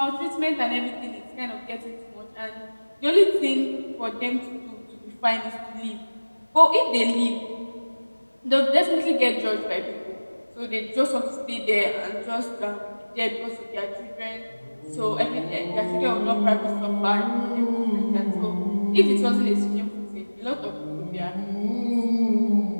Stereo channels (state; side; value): inverted; both; correlation -1.00